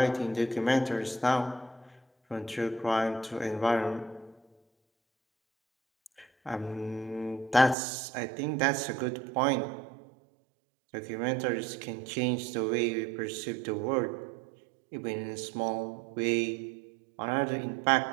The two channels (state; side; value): drops out; left; at 7.8 s